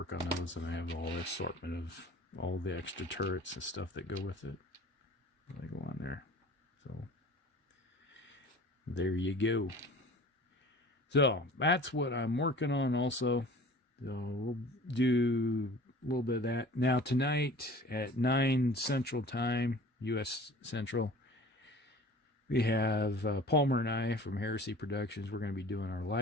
on those, and I have all the assortment of all the extra turrets and stuff that go with it. They go on there. So there you go. So that's what I'm working on also. So we'll do a little bit of that. Now tonight at 9 Central Time, U.S. Central, we have Palmer and I from Heresy Productions. We're going to be doing our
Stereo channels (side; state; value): both; normal; correlation 0.44